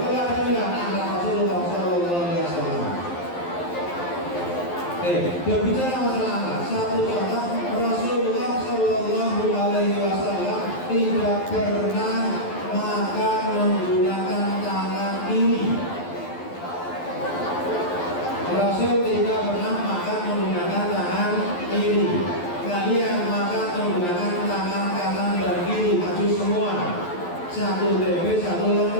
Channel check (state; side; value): late; right; 11 ms